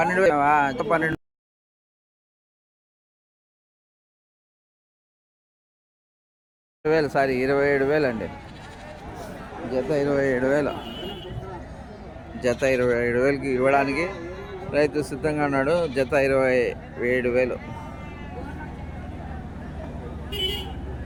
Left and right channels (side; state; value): both; identical; correlation 1.00